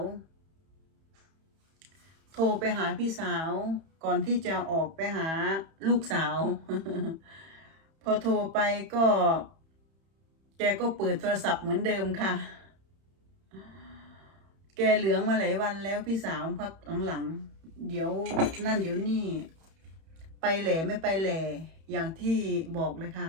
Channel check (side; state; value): left; late; 31 ms